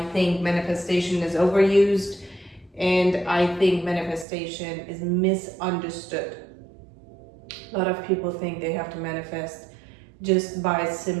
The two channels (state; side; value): drops out; left; at 4.2 s